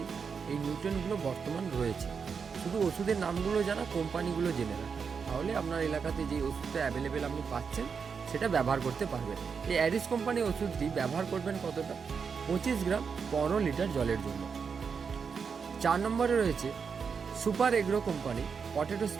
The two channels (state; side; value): quieter; left; 6.0 dB